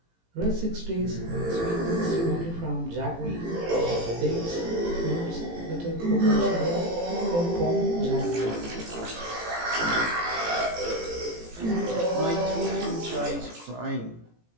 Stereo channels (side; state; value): left; late; 18 ms